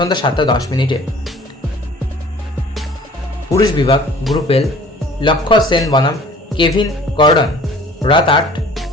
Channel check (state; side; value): normal; both; correlation 0.49